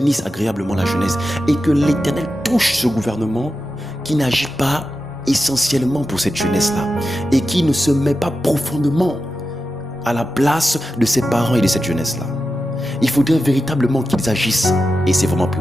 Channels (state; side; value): normal; both; correlation 0.91